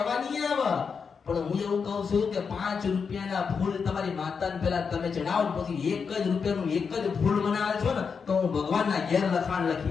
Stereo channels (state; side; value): quieter; right; 5.8 dB